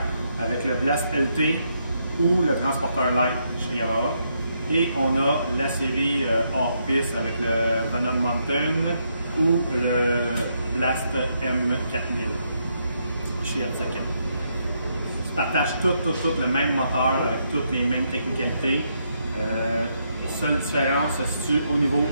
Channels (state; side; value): inverted; both; correlation -0.77